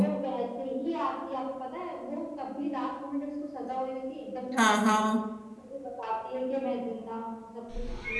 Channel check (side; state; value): both; identical; correlation 1.00